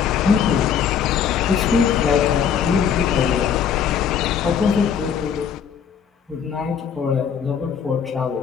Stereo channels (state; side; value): quieter; right; 7.6 dB